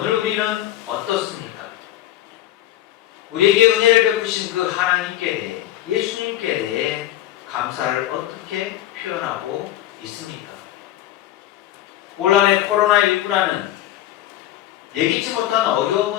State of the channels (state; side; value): quieter; right; 13.5 dB